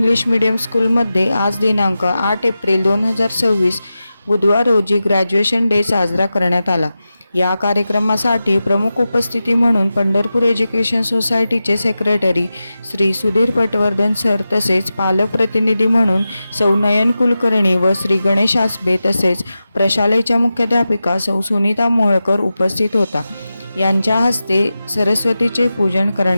medium स्कूलमध्ये आज दिनांक 8 एप्रिल 2026 बुधवार रोजी ग्रॅज्युएशन डे साजरा करण्यात आला. या कार्यक्रमासाठी प्रमुख उपस्थिती म्हणून पंढरपूर एज्युकेशन सोसायटीचे सेक्रेटरी श्री सुधीर पटवर्धन सर तसेच पालक प्रतिनिधी म्हणून सौ नयन कुलकर्णी व श्री गणेश आसबे तसेच प्रशालेच्या मुख्याध्यापिका सौ सुनीता मोहोळकर उपस्थित होता. यांच्या हस्ते सरस्वतीचे पूजन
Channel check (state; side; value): inverted; both; correlation -0.93